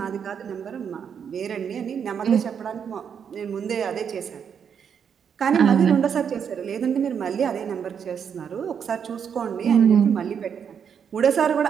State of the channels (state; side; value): quieter; left; 7.5 dB